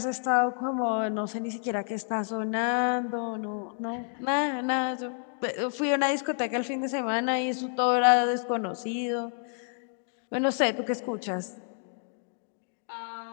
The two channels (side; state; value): right; silent; 57 dB below the other